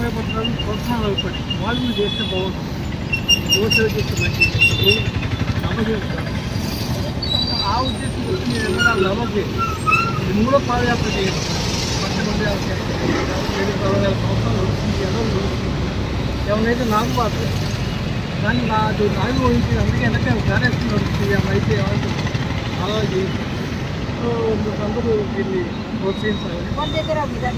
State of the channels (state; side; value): identical; both; correlation 1.00